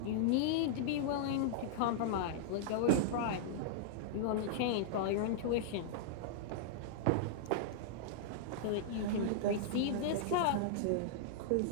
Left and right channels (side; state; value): both; different; correlation -0.01